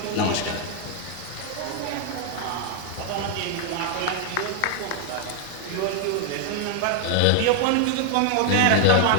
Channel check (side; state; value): both; different; correlation 0.00